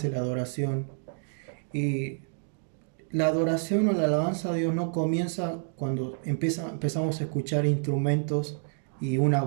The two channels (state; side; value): silent; left; 59 dB below the other